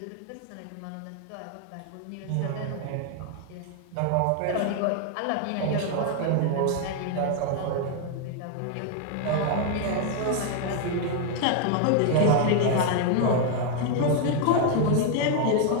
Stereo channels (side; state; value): both; different; correlation 0.00